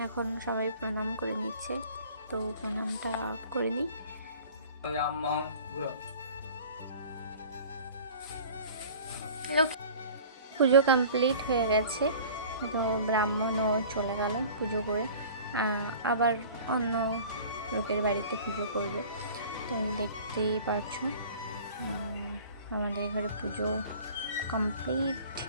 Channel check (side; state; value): both; inverted; correlation -0.44